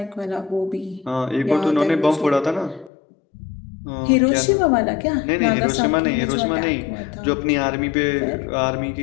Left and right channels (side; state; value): right; drops out; at 2.9 s